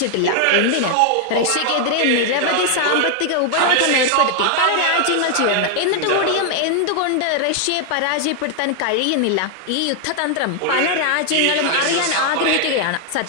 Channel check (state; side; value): different; both; correlation 0.00